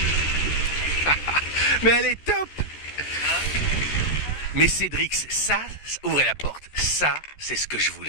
Mais elle est top! Mais Cédrix, ça, ouvrez la porte, ça, c'est ce que je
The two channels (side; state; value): right; late; 13 ms